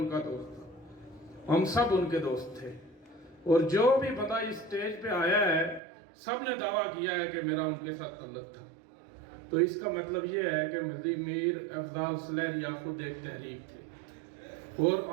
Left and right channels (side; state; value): left; drops out; at 5.8 s